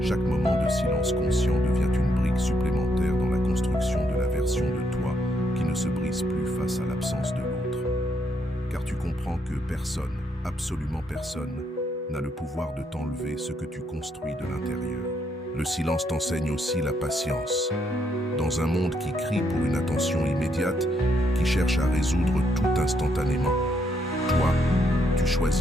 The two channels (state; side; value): normal; both; correlation 0.75